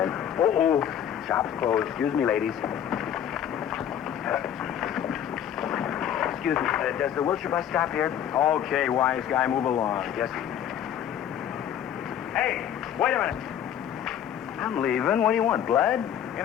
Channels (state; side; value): quieter; right; 9.8 dB